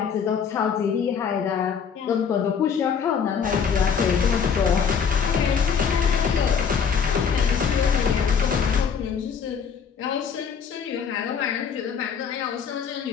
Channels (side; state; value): right; quieter; 6.7 dB